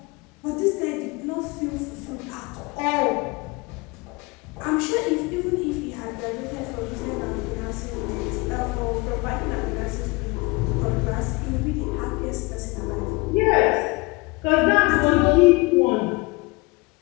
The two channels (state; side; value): quieter; right; 25.7 dB